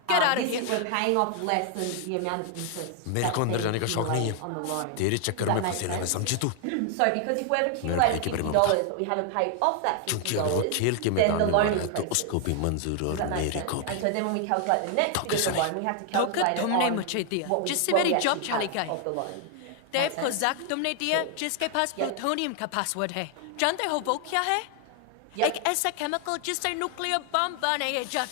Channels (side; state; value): both; different; correlation 0.00